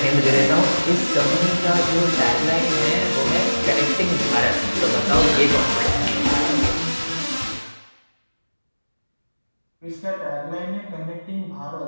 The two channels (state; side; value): inverted; both; correlation -1.00